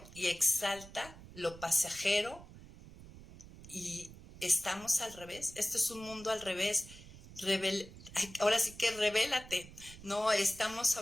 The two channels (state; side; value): noise; right; rumble, 17 dB below the sound